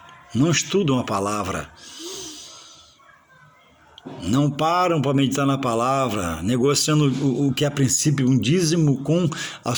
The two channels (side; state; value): both; identical; correlation 1.00